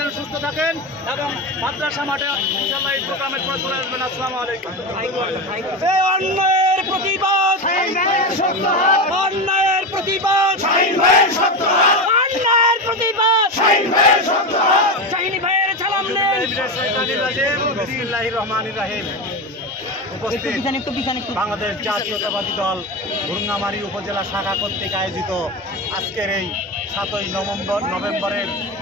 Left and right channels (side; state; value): both; normal; correlation 0.19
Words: সুস্থ থাকেন এবং মাদ্রাসা মাঠে ইনশাআল্লাহ এই প্রোগ্রামের পর চলে আসবেন। আসসালামু আলাইকুম। অন্যায়ের প্রতিবাদ, অন্যায়ের প্রতিবাদ, অন্যায়ের প্রতিবাদ, শাহিনী ভাইয়ের সালাম নেন। বিসমিল্লাহির রহমানির রহিম। উপস্থিত বাংলাদেশ জাতীয়তাবাদী দল ভুরুঙ্গামারী উপজেলা শাখা কর্তৃক আয়োজিত আজকের এই 7ই নভেম্বরের